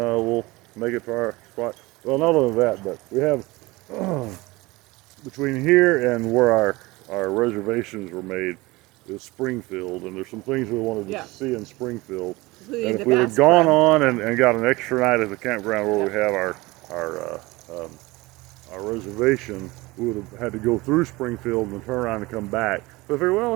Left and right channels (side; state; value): left; quieter; 21.7 dB